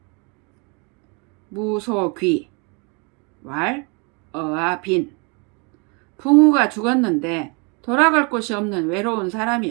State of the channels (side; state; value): left; quieter; 32.8 dB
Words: 무소귀, 왈, 어아, 빈. 붕우가 죽었는데 돌아갈 곳이 없는 외로운